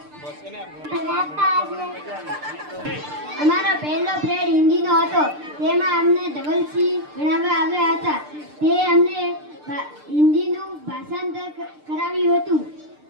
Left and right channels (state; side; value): late; left; 6.7 ms